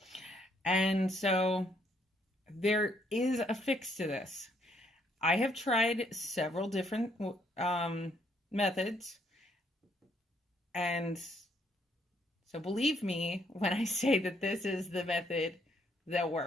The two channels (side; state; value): both; normal; correlation 0.70